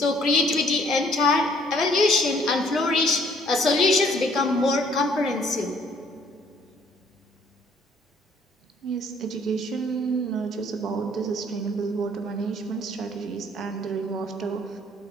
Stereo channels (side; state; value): both; normal; correlation 0.61